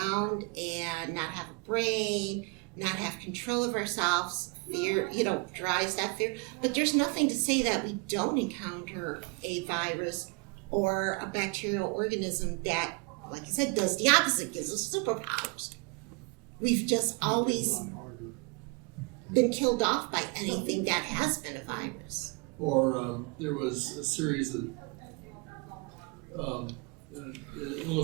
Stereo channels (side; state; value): left; quieter; 30.5 dB